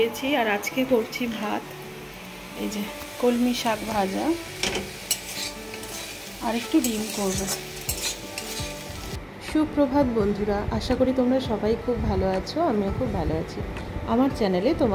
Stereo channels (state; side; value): identical; both; correlation 1.00